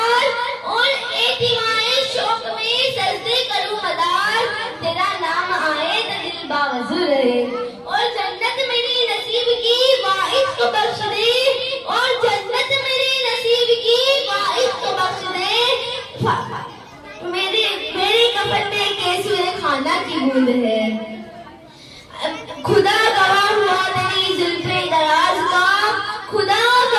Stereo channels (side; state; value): both; identical; correlation 1.00